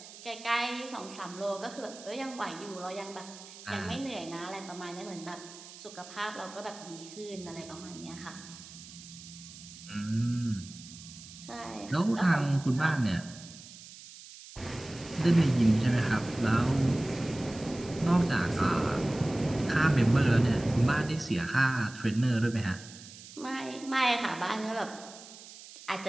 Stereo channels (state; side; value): noise; right; hiss, 17 dB below the sound